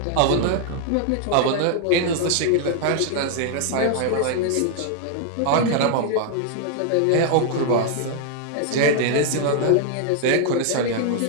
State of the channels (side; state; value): both; different; correlation 0.00